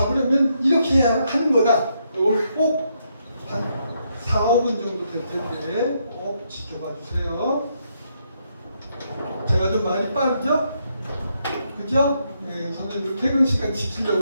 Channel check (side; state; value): both; inverted; correlation -0.77